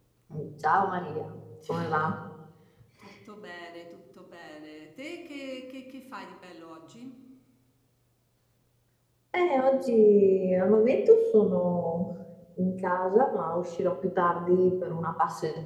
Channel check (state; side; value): identical; both; correlation 1.00